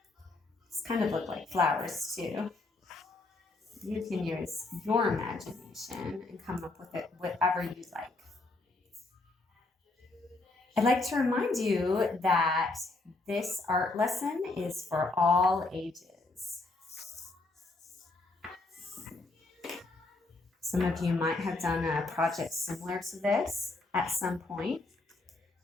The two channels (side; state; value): right; quieter; 3.3 dB